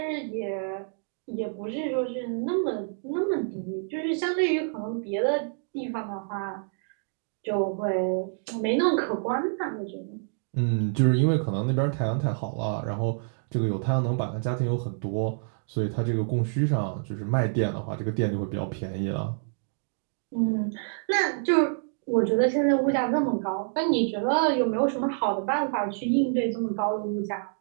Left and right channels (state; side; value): silent; left; digital silence